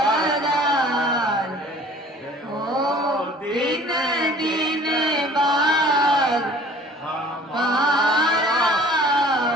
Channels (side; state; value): both; normal; correlation 0.49